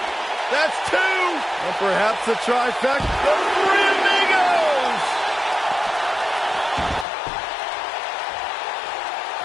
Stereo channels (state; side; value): drops out; right; at 7.1 s